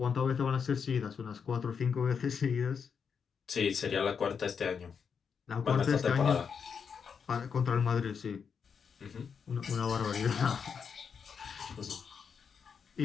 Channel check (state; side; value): quieter; right; 6.5 dB